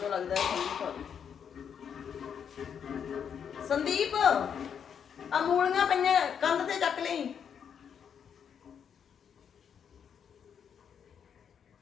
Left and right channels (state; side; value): quieter; right; 7.7 dB